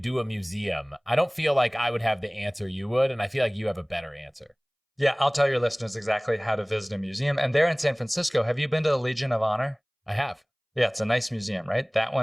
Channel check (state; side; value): identical; both; correlation 1.00